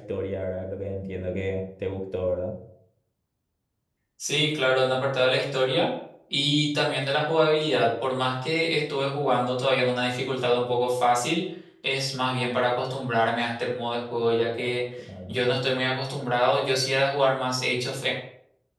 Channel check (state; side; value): identical; both; correlation 1.00